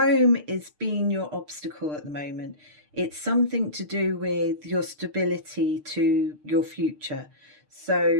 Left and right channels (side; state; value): left; late; 6.6 ms